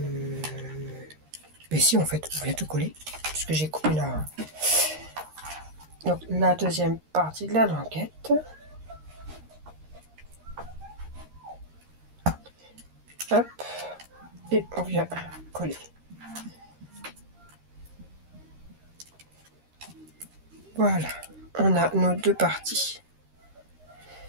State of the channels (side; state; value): left; late; 13 ms